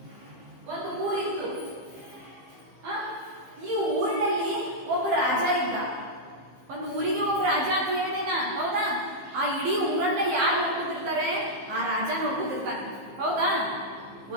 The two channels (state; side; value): late; left; 15 ms